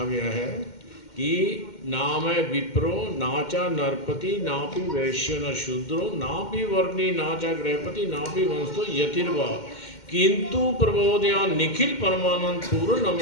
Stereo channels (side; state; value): right; late; 2.1 ms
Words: गया है कि नाम विप्रो नाचा नरपति नापि वैश्य न शूद्रो नापि वर्णी नाचा गृहपति नापि वंशो यतिर्वा किंतु प्रबोधया निखिल परमानंद पूर्ण